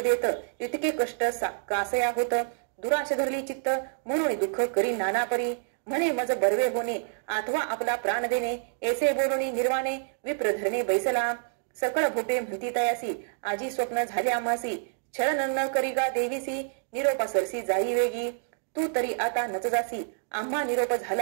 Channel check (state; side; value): silent; left; digital silence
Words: इतके कष्ट कासया होत दुराश धरली चित्त म्हणून दुःख करी नाना परी म्हणे मज बरवे होणे अथवा आपला प्राण देणे ऐसे बोलणी निर्वाणे विप्र धरणे बैसला सकळ भोटे म्हणती तयासी आजी स्वप्न झाले आम्हासी छळन न करीगा देवीसी निरोपा सरसी जाई वेगी तू तरी आता नच जासी आम्हा निरोप